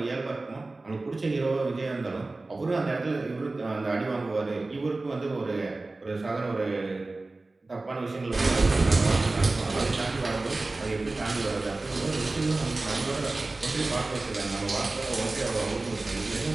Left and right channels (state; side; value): quieter; left; 3.2 dB